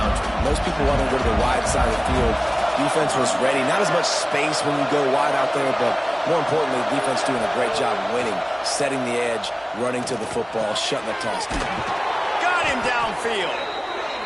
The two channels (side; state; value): both; identical; correlation 1.00